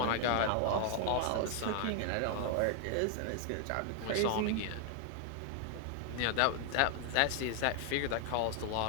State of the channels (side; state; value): both; different; correlation 0.00